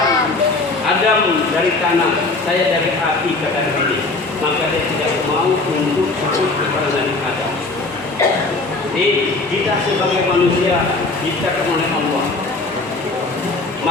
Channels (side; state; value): right; quieter; 3.4 dB